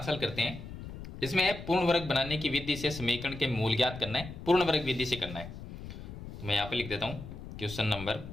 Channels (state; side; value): noise; left; rumble, 11 dB below the sound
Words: हल करते हैं। इसमें है पूर्ण वर्ग बनाने की विधि से समीकरण के मूल ज्ञात करना है, पूर्ण वर्ग विधि से करना है। तो मैं यहाँ पर लिख देता हूँ क्वेश्चन नंबर